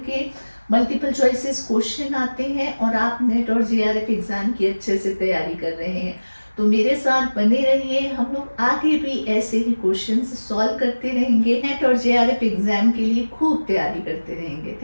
के मल्टीपल चॉइसेस क्वेश्चन आते हैं और आप नेट और जेआरएफ एग्जाम की अच्छे से तैयारी कर रहे हैं। तो मेरे साथ बने रहिए, हम लोग आगे भी ऐसे ही क्वेश्चंस सॉल्व करते रहेंगे, नेट और जेआरएफ एग्जाम के लिए खूब तैयारी करते रहेंगे।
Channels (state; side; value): inverted; both; correlation -1.00